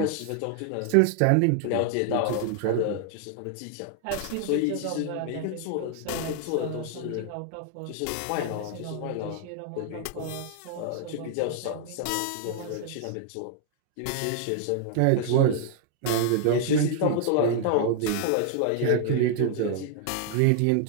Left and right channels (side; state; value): both; different; correlation 0.00